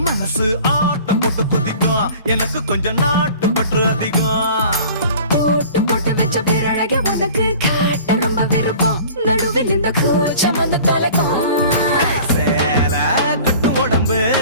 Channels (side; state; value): both; inverted; correlation -0.45